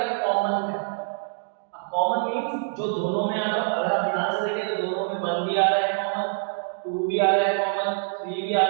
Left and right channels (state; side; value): silent; left; digital silence